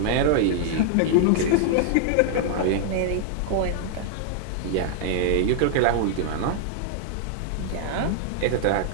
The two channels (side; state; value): both; different; correlation 0.00